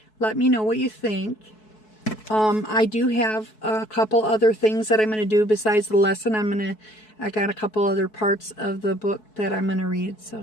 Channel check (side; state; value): right; late; 4.7 ms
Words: Let me know what you think. I do have a couple other things that I'm going to do besides the lesson. I got a couple other parts of the book that I'm going to read.